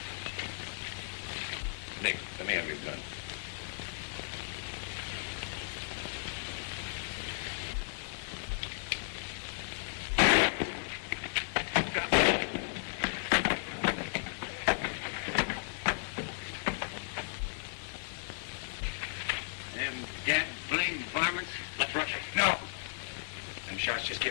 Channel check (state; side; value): silent; right; 55 dB below the other